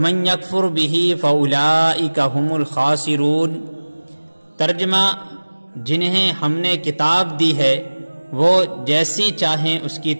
یکفر بہ فاولئک ھم الخاسرون۔ ترجمہ: جنہیں ہم نے کتاب دی ہے وہ جیسی چاہیں اس کی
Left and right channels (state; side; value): inverted; both; correlation -1.00